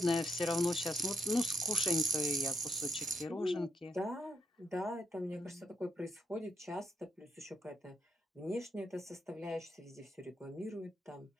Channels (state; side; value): normal; both; correlation 0.80